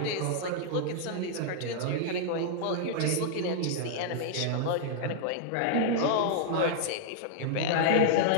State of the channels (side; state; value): both; different; correlation -0.01